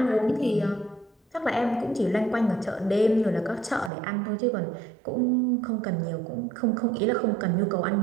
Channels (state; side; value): drops out; left; at 3.9 s